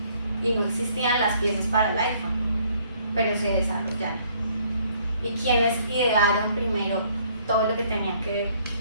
Y no existían las piezas para el iPhone, pero se desarrollaron. ¿Y quienes idearon primero todo lo que tenía que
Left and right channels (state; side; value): inverted; both; correlation -0.63